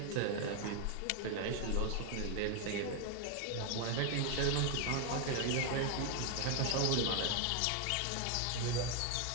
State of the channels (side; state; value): both; different; correlation 0.01